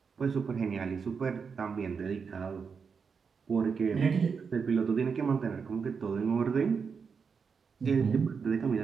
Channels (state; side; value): quieter; left; 5.8 dB